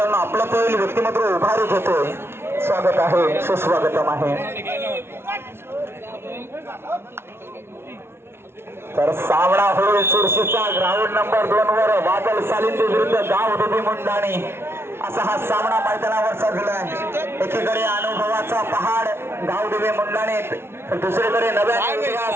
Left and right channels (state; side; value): late; left; 0.12 ms